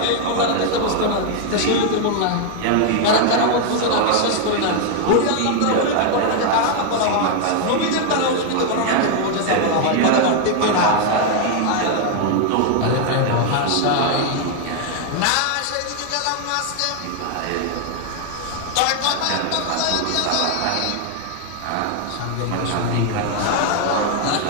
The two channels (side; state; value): both; different; correlation 0.00